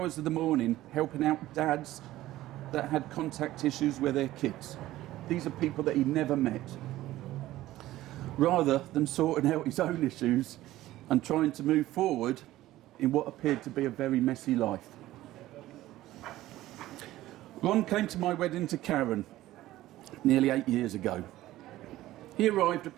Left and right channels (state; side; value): quieter; left; 15.6 dB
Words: of the morning helping out dads that had contact issues with their kids. These are people that he never met. Rather than sorting out his own issues and trying to move forward in what appeared to be a very messy life. Ron came to my wedding to Karen nearly 8 years ago. He arrived